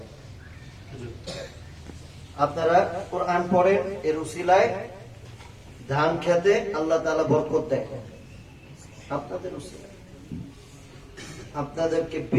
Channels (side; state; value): both; identical; correlation 1.00